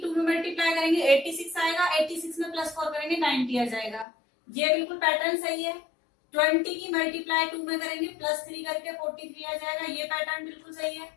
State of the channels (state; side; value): drops out; right; at 4.0 s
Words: 2 में मल्टीप्लाई करेंगे 86 आएगा, 86 में +4 करेंगे 90 आ जाएगा। ये बिल्कुल पैटर्न सही है। 20 की मल्टीप्लाई 2 में करेंगे +3 करके 43 आ जाएगा। ये पैटर्न बिल्कुल सही है,